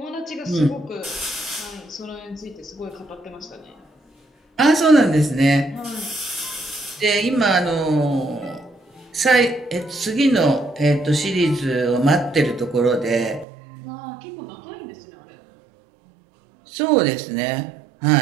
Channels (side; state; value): left; drops out; at 13.5 s